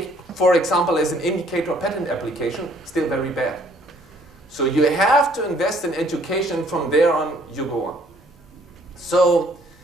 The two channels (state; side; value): normal; both; correlation 0.62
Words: for example, as an indicator patent application, still very bad. So you have to invest in education. From there on, you go on. So,